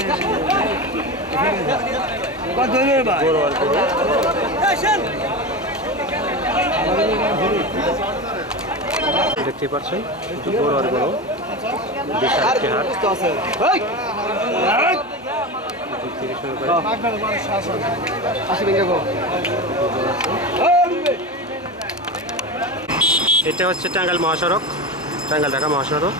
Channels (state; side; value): normal; both; correlation 0.23